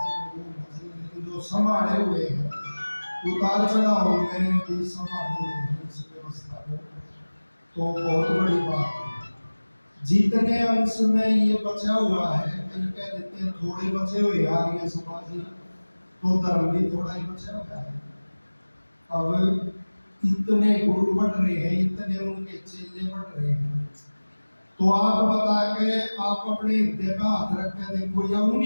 वो होना चाहिए, लेकिन जो संभाले हुए हैं उतार चढ़ाव में भी संभाले हुए हैं इस व्यवस्था को, तो बहुत बड़ी बात है। जितने अंश में ये बचा हुआ है, कई कह देते हैं थोड़े बचे हुए आर्य समाजी, तो धर्म भी थोड़ा ही बचा हुआ है। अब इतने गुरु बढ़ रहे हैं, इतने उनके चेले बढ़ रहे हैं, तो आप बता के आप अपने हृदय पे हाथ रख के देखो या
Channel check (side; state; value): both; inverted; correlation -1.00